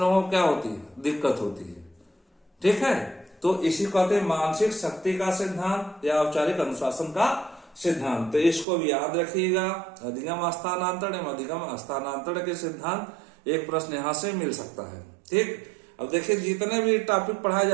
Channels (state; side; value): drops out; left; at 8.7 s